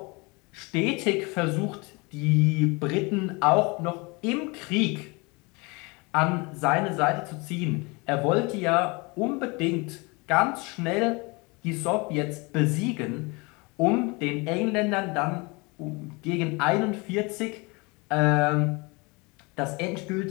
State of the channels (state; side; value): quieter; right; 27.5 dB